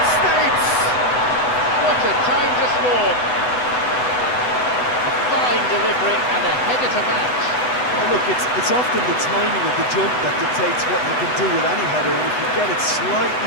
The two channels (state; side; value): late; right; 8.0 ms